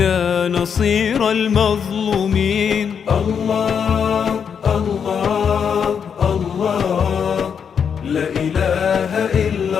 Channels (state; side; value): quieter; right; 7.1 dB